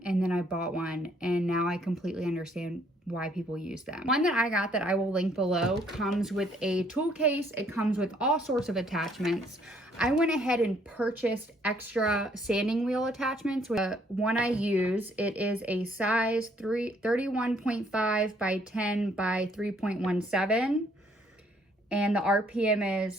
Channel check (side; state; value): both; normal; correlation 0.66